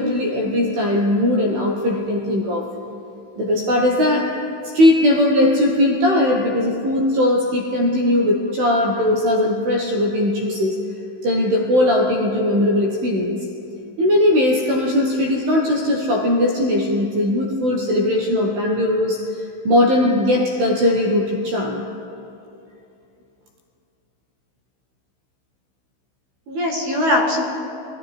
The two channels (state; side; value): late; left; 16 ms